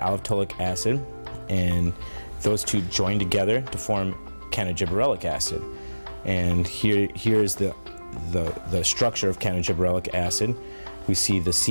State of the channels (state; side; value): inverted; both; correlation -1.00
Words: acid, and those two join together to form cannagibberellic acid. And here is the structure of cannagibberellic acid. We see the